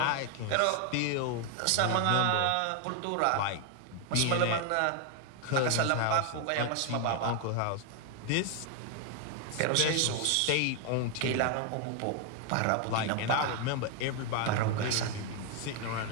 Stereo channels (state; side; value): different; both; correlation 0.01